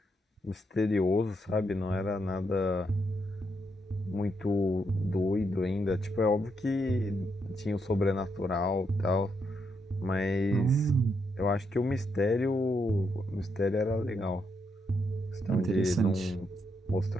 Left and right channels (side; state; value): both; normal; correlation 0.79